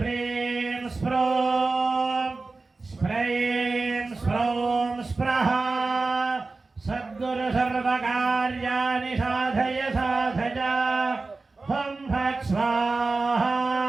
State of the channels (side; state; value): left; quieter; 3.7 dB